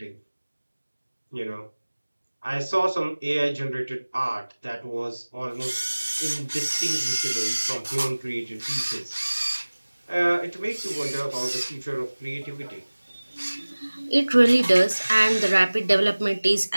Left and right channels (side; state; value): both; inverted; correlation -1.00